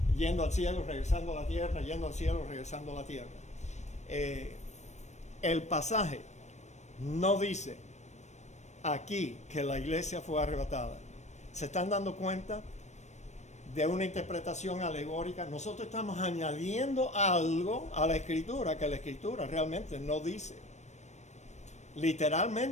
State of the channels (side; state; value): right; late; 0.34 ms